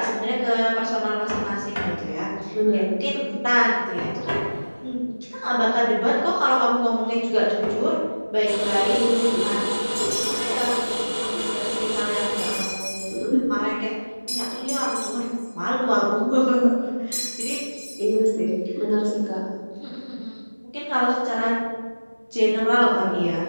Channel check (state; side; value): inverted; both; correlation -1.00